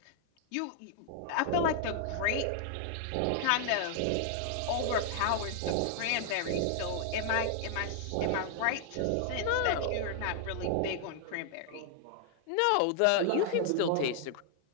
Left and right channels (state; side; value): different; both; correlation 0.00